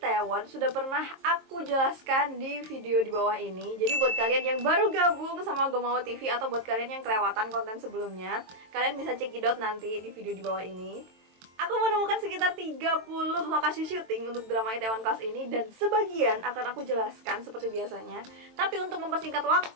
sudah pernah aku jelaskan di video di bawah ini. Jadi buat kalian yang baru gabung sama Gomawo TV atau buat kalian yang kelewatan konten sebelumnya, kalian bisa cekidot nanti di video di bawah ini. Aku menemukan sekitar 30 lokasi syuting untuk drama Itaewon Class ini dan sebagian akan aku jelaskan seperti biasanya. Tapi untuk mempersingkat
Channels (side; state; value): left; late; 23 ms